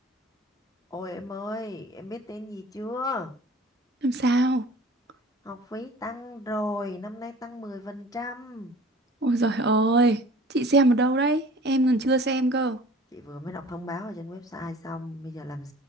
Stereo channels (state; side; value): normal; both; correlation 0.46